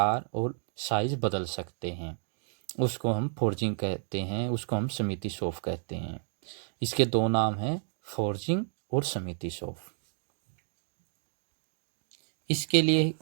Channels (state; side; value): silent; left; 57 dB below the other